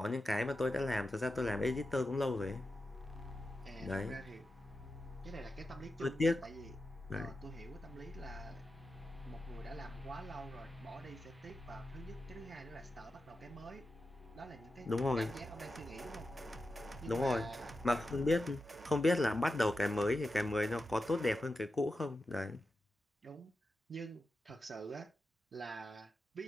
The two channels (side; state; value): both; normal; correlation 0.90